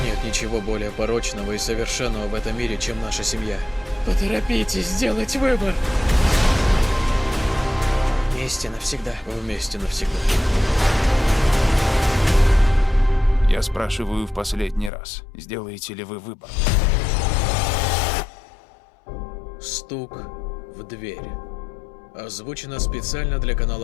Нет ничего более порочного и совершенного в этом мире, чем наша семья. Поторопитесь сделать выбор. Вместе навсегда. Вместе навсегда. Я спрашиваю в последний раз, сделаете ли вы выбор? Стук в дверь. Озвучено специально для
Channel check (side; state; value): right; drops out; at 14.9 s